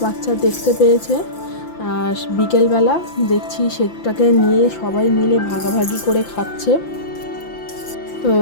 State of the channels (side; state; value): right; late; 5.9 ms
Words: বাচ্চা দেখতে পেয়েছে। বিকেলবেলা দেখছি সেটাকে নিয়ে সবাই মিলে ভাগাভাগি করে খাচ্ছে। তো